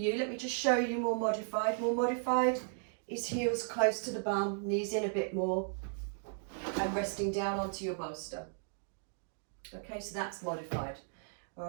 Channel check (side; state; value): left; silent; digital silence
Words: Let me just show you more modified. More modified is heels close to the bum, knees in a bit more, and resting down onto your bolster. Okay, so that's modified.